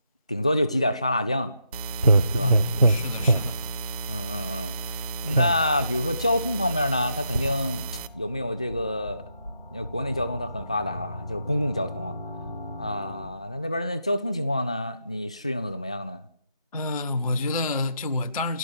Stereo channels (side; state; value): both; inverted; correlation -0.80